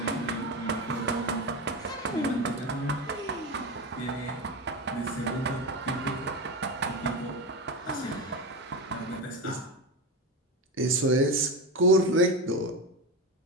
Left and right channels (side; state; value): both; normal; correlation 0.18